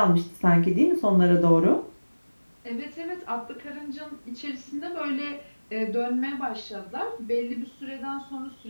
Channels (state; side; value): inverted; both; correlation -1.00